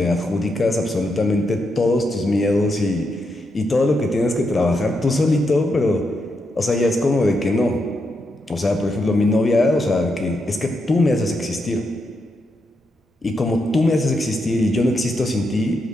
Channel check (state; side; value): normal; both; correlation 0.83